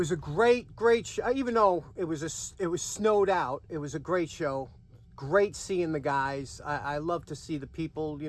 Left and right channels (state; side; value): identical; both; correlation 1.00